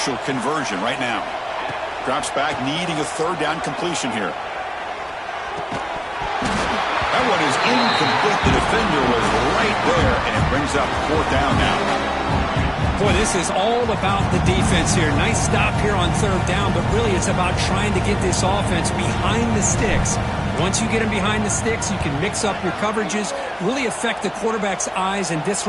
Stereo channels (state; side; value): identical; both; correlation 1.00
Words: conversion right now. Drops back, needing a third down completion here. That one is incomplete. The defender was right there, and it brings up fourth down now. Boy, this is all about the defense here. Nice stop here on third down, but really it's about trying to get this offense behind the sticks. Once you get them behind the sticks, you can mix up your coverages, really affect the quarterback's eyes and